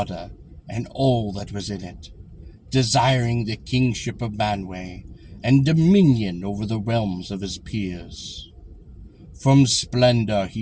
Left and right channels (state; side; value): identical; both; correlation 1.00